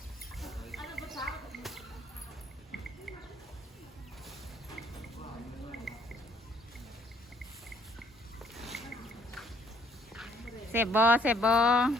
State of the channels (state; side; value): normal; both; correlation 0.64